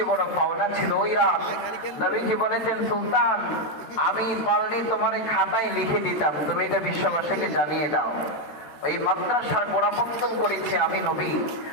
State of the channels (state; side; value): late; right; 13 ms